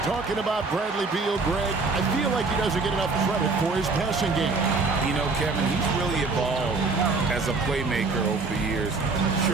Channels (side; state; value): left; quieter; 4.0 dB